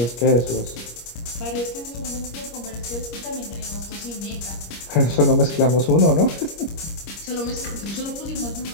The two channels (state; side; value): late; right; 25 ms